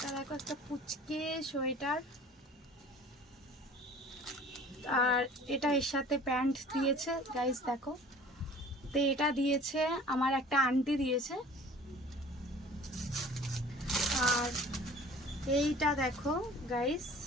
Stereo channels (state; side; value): normal; both; correlation 0.47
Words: দেখো একটা পুচকে সোয়েটার, আর এটা এর সাথে প্যান্ট দিয়েছে গাইস, দেখো। তো এটা দিয়েছে আমার একটা আন্টি দিয়েছে। আর এইটা দেখো গাইস,